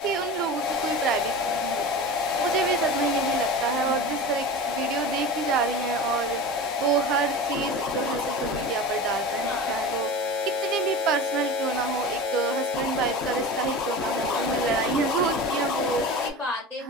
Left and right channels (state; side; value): normal; both; correlation 0.31